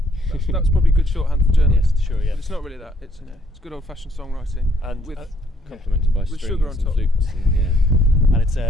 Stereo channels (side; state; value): both; normal; correlation 0.68